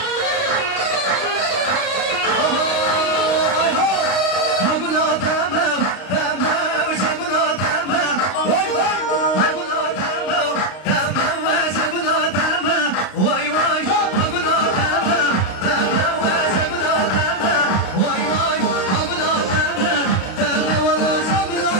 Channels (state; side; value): late; right; 32 ms